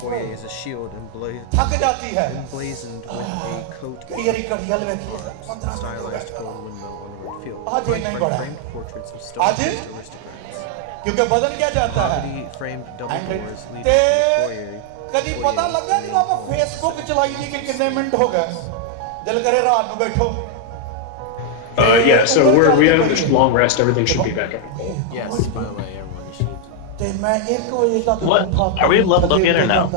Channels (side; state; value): both; different; correlation 0.00